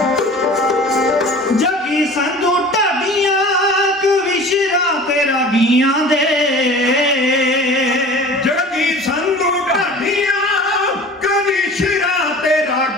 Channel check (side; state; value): both; normal; correlation 0.42